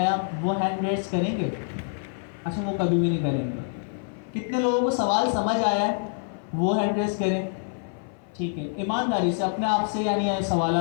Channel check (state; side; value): silent; right; 56 dB below the other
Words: वो हैंड रेज करेंगे? अच्छा, वो कभी भी नहीं करेंगे। कितने लोगों को सवाल समझ आया है वो हैंड रेज करें, ठीक है। ईमानदारी से अपने आप से, यानी